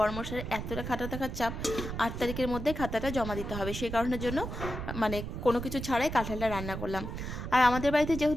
এতটা খাতা থাকার চাপ। ৮ তারিখের মধ্যে খাতাটা জমা দিতে হবে। সেই কারণের জন্য মানে কোনো কিছু ছাড়াই কাঁঠালটা রান্না করলাম। আর আমাদের বাড়িতে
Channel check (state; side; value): noise; right; rumble, 6 dB below the sound